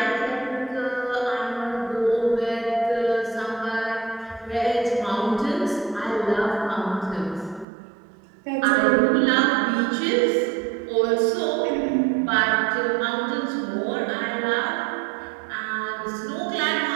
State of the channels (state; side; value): drops out; left; at 7.7 s